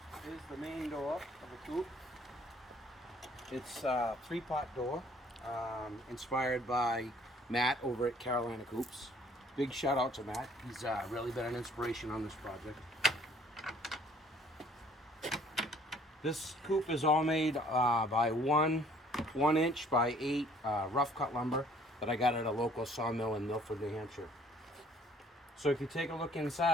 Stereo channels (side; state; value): both; normal; correlation 0.58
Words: Here's the main door of the Coop. It's a 3-pot door, inspired by Matt over at Carolina Coops. Big shout out to Matt. He's really been an inspiration on this project. This Coop is all made by 1 inch by 8 rough cut lumber that I got at a local sawmill in Milford, New Hampshire. So if you take a look